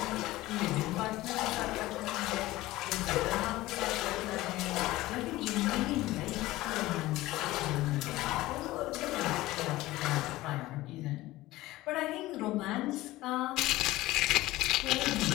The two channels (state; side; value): quieter; right; 17.7 dB